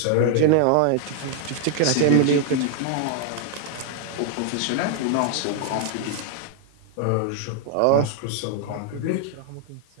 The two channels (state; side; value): different; both; correlation 0.00